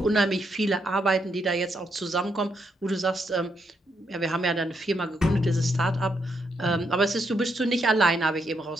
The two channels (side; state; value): both; normal; correlation 0.78